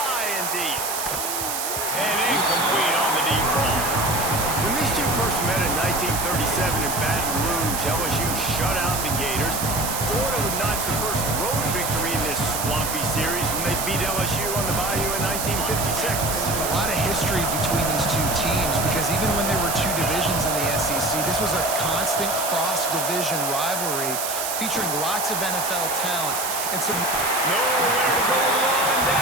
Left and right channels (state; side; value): noise; right; hiss, 3 dB below the sound